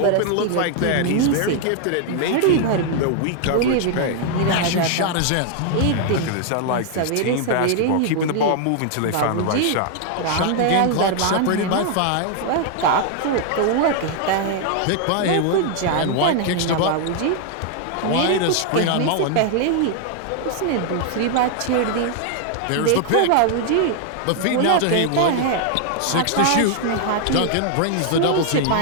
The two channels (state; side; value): different; both; correlation 0.00